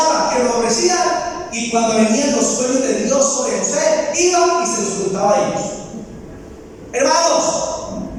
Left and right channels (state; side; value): identical; both; correlation 1.00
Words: que lo aborrecían, y cuando venían los sueños de Dios sobre José, iba y se los contaba a ellos. Hermanos,